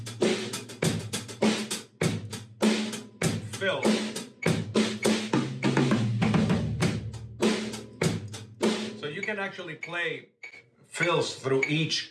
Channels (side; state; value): both; identical; correlation 1.00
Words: Fill. So you can actually play fills through each